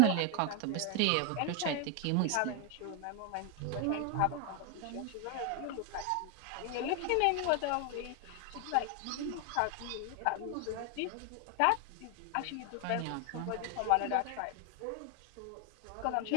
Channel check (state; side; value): different; both; correlation 0.01